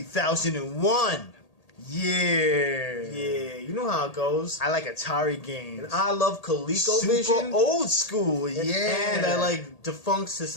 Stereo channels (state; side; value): late; right; 1.8 ms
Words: Yeah. Yeah, you know how it goes. I like Atari games. And I love ColecoVision. Super old school, yeah. And I like defunct